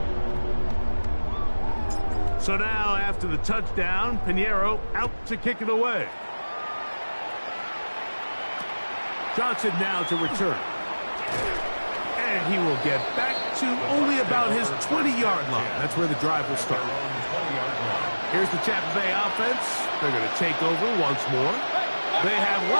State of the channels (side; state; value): both; inverted; correlation -1.00